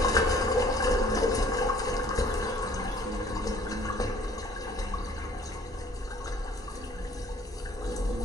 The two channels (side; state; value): both; normal; correlation 0.55